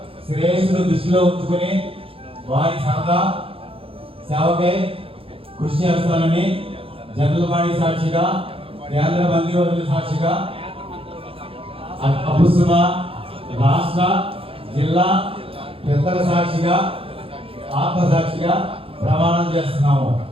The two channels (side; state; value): left; late; 0.27 ms